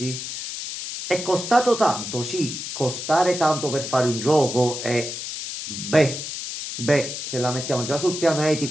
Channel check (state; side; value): noise; left; hiss, 7 dB below the sound